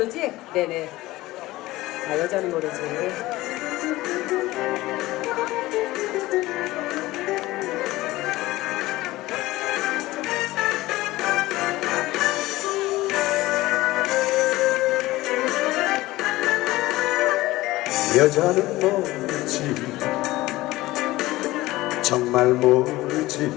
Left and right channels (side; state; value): right; quieter; 18.2 dB